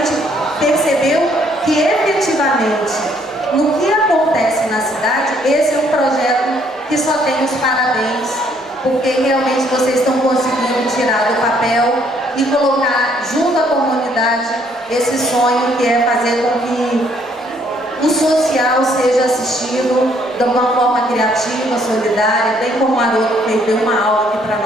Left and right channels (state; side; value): normal; both; correlation 0.66